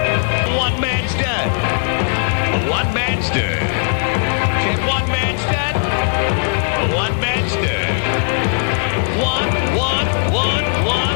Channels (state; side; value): silent; right; digital silence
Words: One-man stud. One-man stud. Said one-man stud. One-man stud. One.